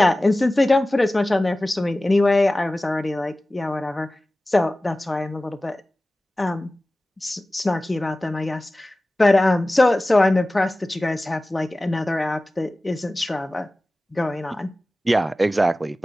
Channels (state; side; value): normal; both; correlation 0.97